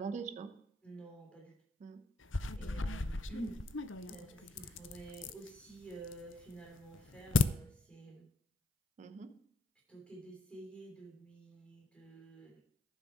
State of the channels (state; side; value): normal; both; correlation 0.73